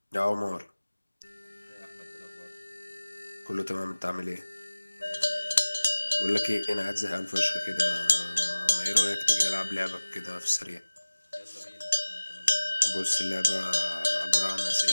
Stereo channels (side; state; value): both; inverted; correlation -1.00